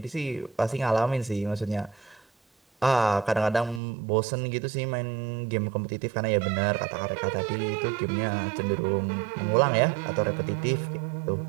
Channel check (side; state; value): left; drops out; at 3.8 s